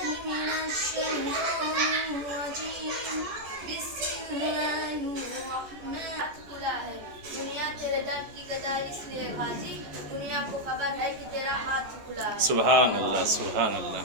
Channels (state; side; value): late; left; 14 ms